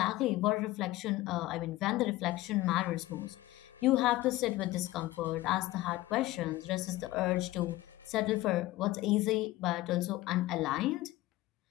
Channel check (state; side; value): quieter; right; 17.4 dB